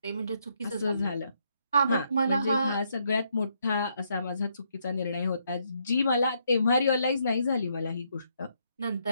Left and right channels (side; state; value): both; inverted; correlation -0.75